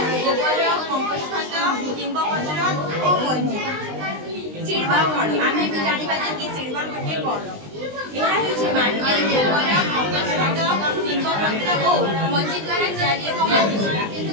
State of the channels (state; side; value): late; left; 20 ms